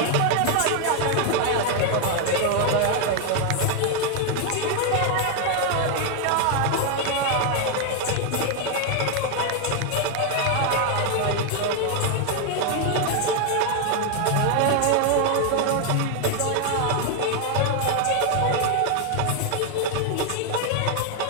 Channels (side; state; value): both; different; correlation 0.01